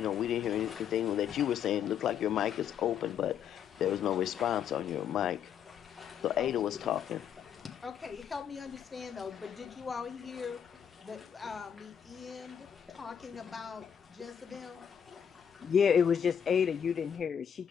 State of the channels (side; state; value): right; quieter; 8.4 dB